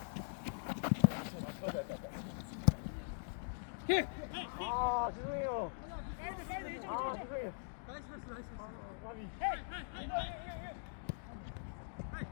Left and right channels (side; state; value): right; silent; digital silence